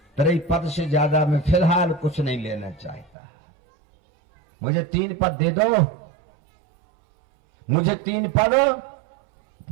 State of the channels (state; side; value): drops out; left; at 3.1 s